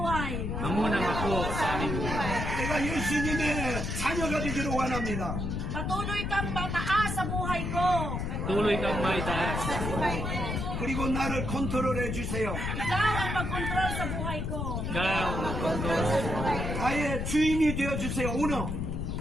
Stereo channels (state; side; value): noise; left; rumble, 2 dB below the sound